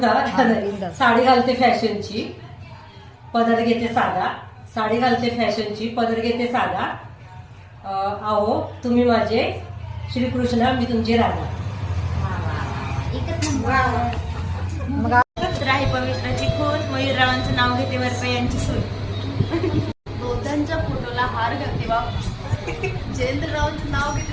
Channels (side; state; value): both; identical; correlation 1.00